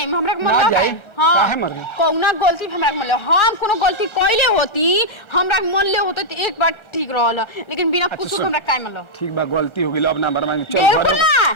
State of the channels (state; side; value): late; right; 1.3 ms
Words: हमरा के ना जाए काहे मर गए कौना गलती हमरा के मन ले हम कोनो गलती कइले होती हमरा के मन ले होते तो एक बार ठीक रहल लेकिन बिना कुछ हमरा काहे मन लो ठीक बा गलती हो गेल अब ना मरवा चल